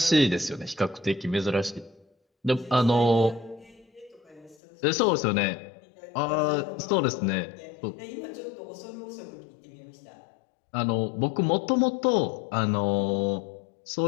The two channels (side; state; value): right; drops out; at 4.5 s